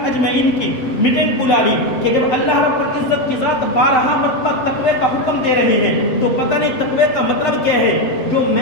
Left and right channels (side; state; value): right; late; 7.8 ms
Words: اجمعین کی میٹنگ بلا لی کہ جب اللہ رب العزت کی ذات 12 مرتبہ تقوی کا حکم دے رہے ہیں تو پتہ نہیں تقوی کا مطلب کیا ہے۔ جو